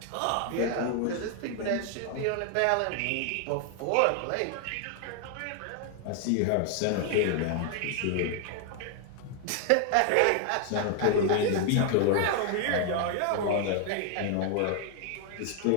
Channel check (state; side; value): different; both; correlation 0.00